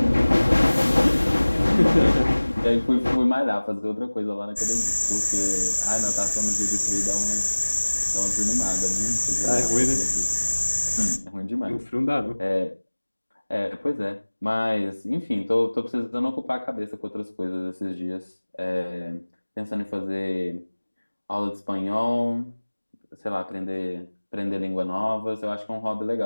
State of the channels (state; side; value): inverted; both; correlation -1.00